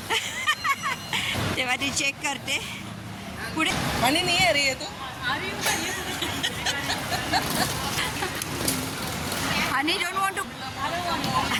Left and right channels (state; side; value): identical; both; correlation 1.00